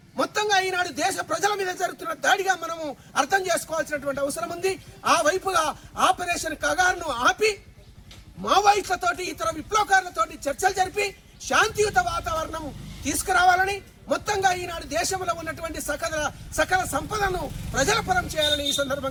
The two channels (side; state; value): both; identical; correlation 1.00